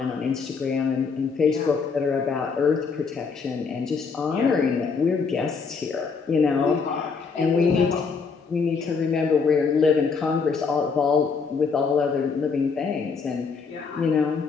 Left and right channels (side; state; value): right; quieter; 5.2 dB